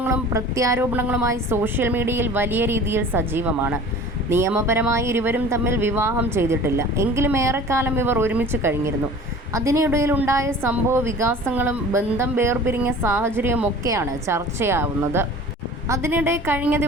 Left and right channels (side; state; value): both; normal; correlation 0.43